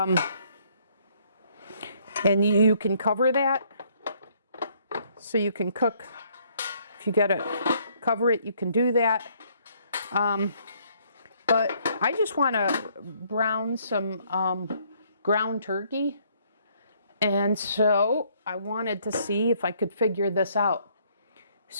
and you can cover that, so you can cook. If you gotta cover it, you can do that. But I just want to brown some ground turkey, and so I wanted to see if I could figure this out.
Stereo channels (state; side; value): inverted; both; correlation -0.66